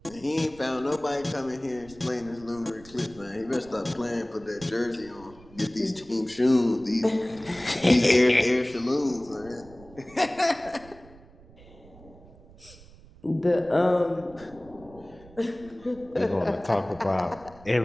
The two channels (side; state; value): right; noise; rumble, 22 dB below the sound